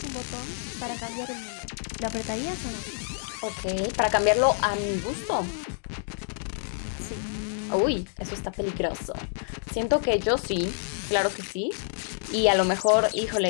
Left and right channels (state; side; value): silent; right; digital silence